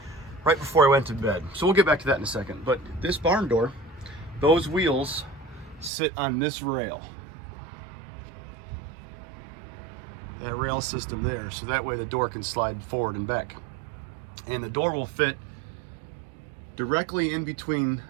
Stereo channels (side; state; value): left; drops out; at 5.9 s